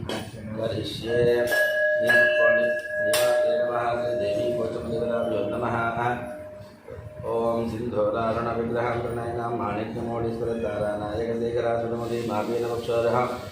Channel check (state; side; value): identical; both; correlation 1.00